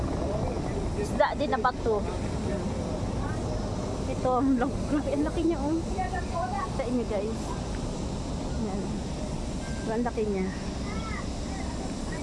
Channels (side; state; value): both; identical; correlation 1.00